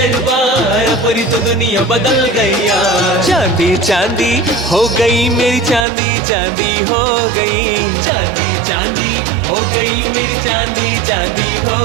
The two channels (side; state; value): left; drops out; at 5.9 s